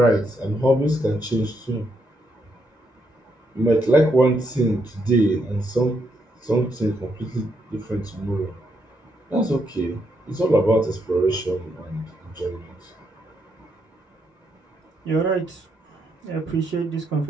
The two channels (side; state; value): both; normal; correlation 0.77